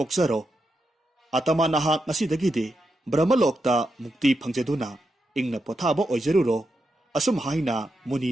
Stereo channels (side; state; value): both; normal; correlation 0.86